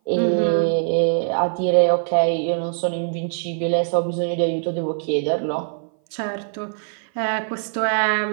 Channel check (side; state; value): left; silent; 58 dB below the other